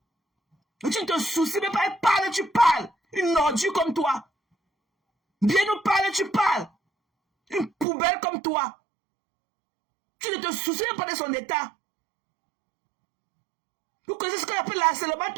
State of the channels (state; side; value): drops out; left; at 7.9 s